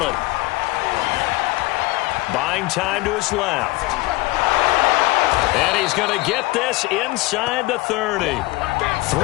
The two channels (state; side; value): quieter; right; 21.2 dB